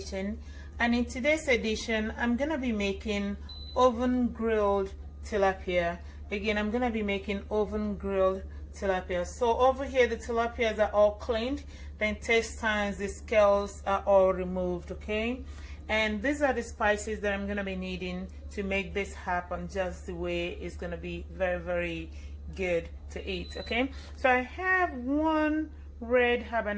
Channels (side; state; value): both; identical; correlation 1.00